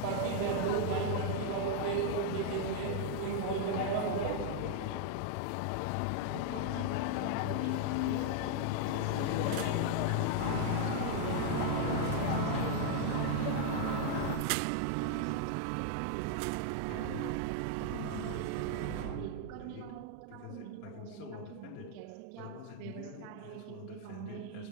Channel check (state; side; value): different; both; correlation 0.00